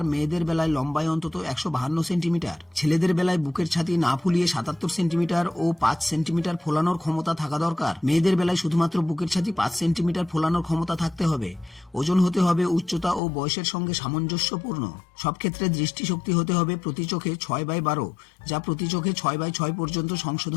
মেয়েদের বেলায় লম্বায় অন্তত 152 সেন্টিমিটার। ছেলেদের বেলায় বুকের ছাতি না ফুলিয়ে 77 সেন্টিমিটার ও 5 সেন্টিমিটার ফোলানোর ক্ষমতা থাকা দরকার। মেয়েদের বেলায় শুধুমাত্র বুকের ছাতি 5 সেন্টিমিটার ফোলানোর ক্ষমতা থাকতে হবে। ওজন হতে হবে উচ্চতা ও বয়সের সঙ্গে সামঞ্জস্যপূর্ণ। সব ক্ষেত্রে দৃষ্টিশক্তি হতে হবে প্রতি চোখে 6/12, যা প্রতি চোখে 6/6 পর্যন্ত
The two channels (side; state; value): right; drops out; at 13.2 s